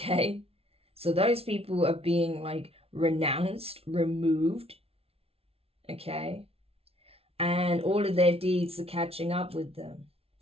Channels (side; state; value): left; late; 0.29 ms